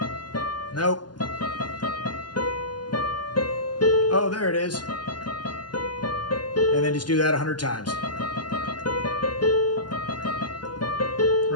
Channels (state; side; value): late; right; 0.71 ms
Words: nope, oh, there it is. And then just do that 100 times.